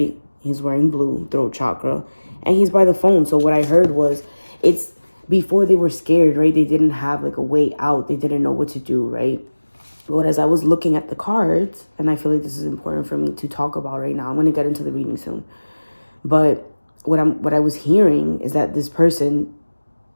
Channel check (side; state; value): both; inverted; correlation -1.00